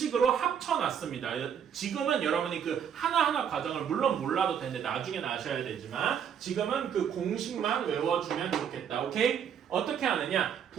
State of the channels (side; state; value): left; quieter; 8.2 dB